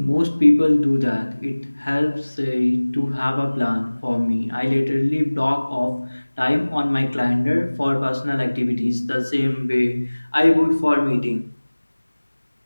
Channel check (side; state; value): both; inverted; correlation -1.00